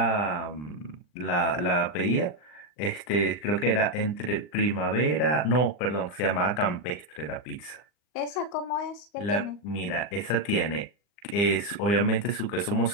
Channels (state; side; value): late; right; 40 ms